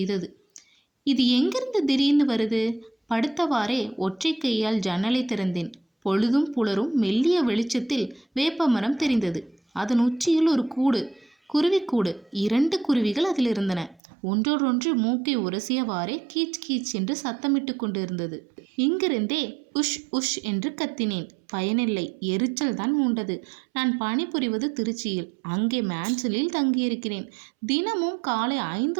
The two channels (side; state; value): left; drops out; at 14.0 s